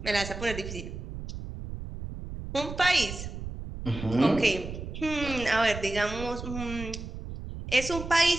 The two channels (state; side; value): noise; right; rumble, 9 dB below the sound